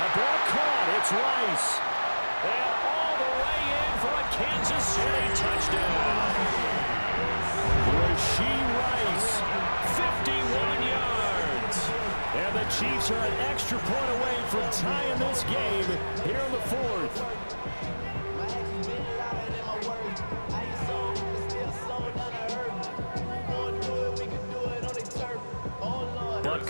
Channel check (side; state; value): both; inverted; correlation -1.00